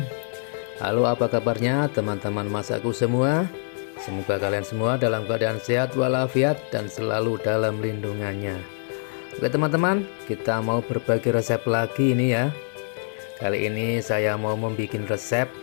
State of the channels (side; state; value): right; silent; digital silence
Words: Halo, apa kabarnya teman-teman masaku semua? Semoga kalian semua dalam keadaan sehat walafiat dan selalu dalam lindungannya. Oke teman-teman, kita mau berbagi resep lagi ini ya. Kali ini saya mau membuat resep,